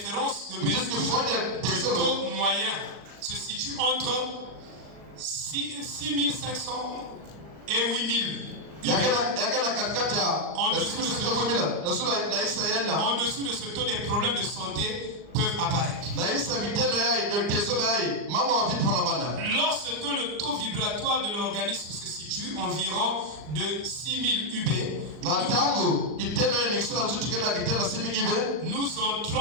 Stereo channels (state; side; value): late; left; 39 ms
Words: de mesure, le taux moyen se situe entre 6500 et 8000. En dessous de ce taux, des problèmes de santé peuvent apparaître. Lorsque le taux vibratoire de l'organisme se situe environ de 6000 UB, nous